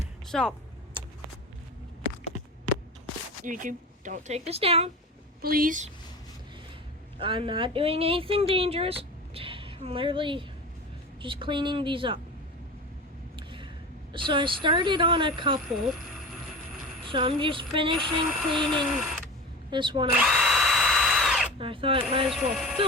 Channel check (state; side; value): normal; both; correlation 0.31